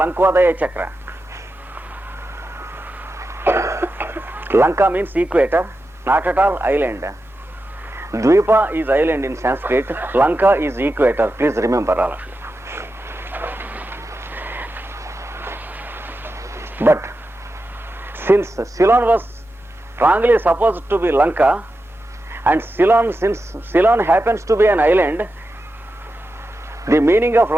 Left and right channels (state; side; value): normal; both; correlation 0.90